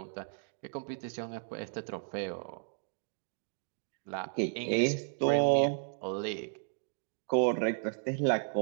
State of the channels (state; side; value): silent; left; digital silence